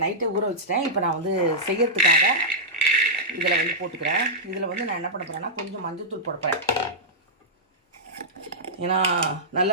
நைட்டே ஊற வச்சுட்டேன். இப்போ நான் வந்து செய்யறதுக்காக இதில் வந்து போட்டுக்கிறேன். இதில் வந்து நான் என்ன பண்ண போகிறேன்னா கொஞ்சம் மஞ்சள்தூள் போட போகிறேன். ஏன்னா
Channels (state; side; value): normal; both; correlation -0.10